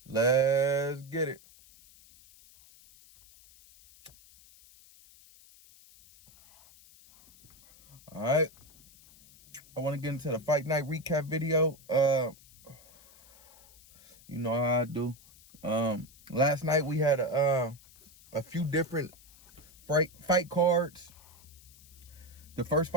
Let's get it. All right. I want to get into the fight night recap video. You know how I do. Last night we had a few different fight cards. The first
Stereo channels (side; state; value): left; noise; hiss, 24 dB below the sound